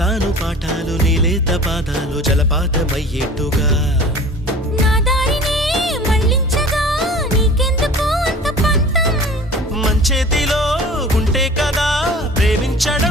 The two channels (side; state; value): both; normal; correlation 0.43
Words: చెబుతాను పాఠాలు నీలేత పాదాలు జలపాతమయ్యేట్టుగా నా దారినే మళ్ళించగా నీకెందుకు అంత పంతం మంచేతిలో ఉంటే కదా